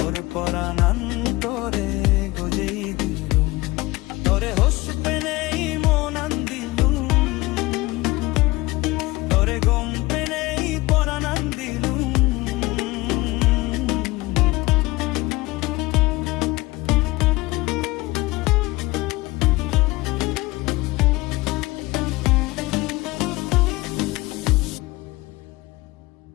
পরাণ তরে গজেই দিলু। তরে হস পেলেই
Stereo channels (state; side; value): quieter; right; 21.0 dB